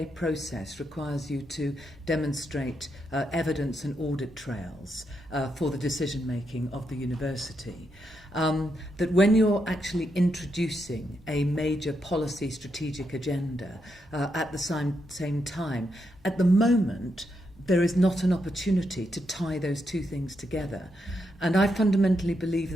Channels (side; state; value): both; normal; correlation 0.82